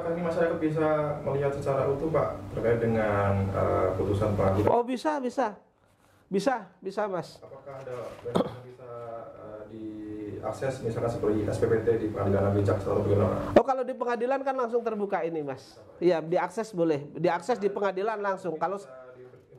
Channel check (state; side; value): identical; both; correlation 1.00